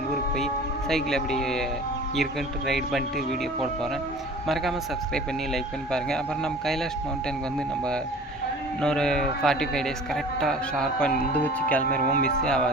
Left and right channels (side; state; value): both; normal; correlation 0.43